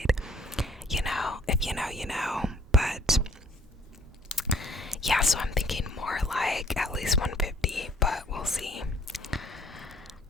If you know. But yeah, so I'm thinking more like at least 150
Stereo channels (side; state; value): both; normal; correlation 0.60